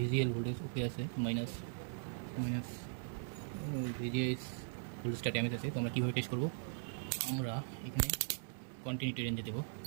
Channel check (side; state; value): left; silent; digital silence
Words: ভোল্টেজ ওকে আছে, মাইনাস ভিজিএস ভোল্টেজটা ড্যামেজ আছে। তো আমরা কীভাবে টেস্ট করবো? আমরা এখানে কন্টিনিউটি রেঞ্জে দেবো